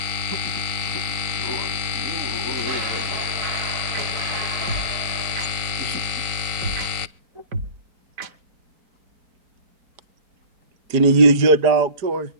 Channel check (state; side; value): late; left; 4.0 ms